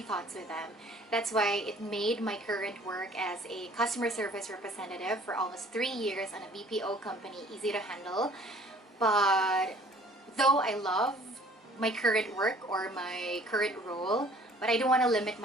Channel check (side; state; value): both; normal; correlation 0.53